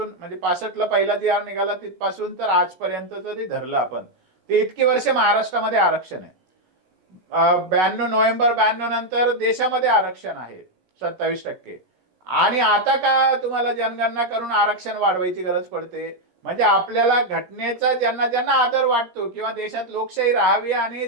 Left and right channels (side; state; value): left; late; 17 ms